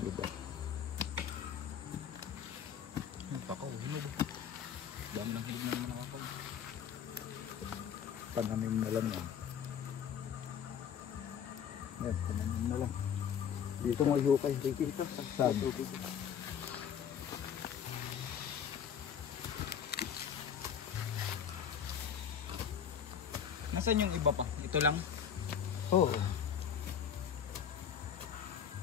iba. Pakaw, hinog. Dami ng hinog na naman nakakaw. Pananim na lang yan. Yan, pananim na lang. Dito mo ihukay. Dito. Saan? Nasaan yung iba pa? Ito lang? Oo.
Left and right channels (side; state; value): right; quieter; 8.1 dB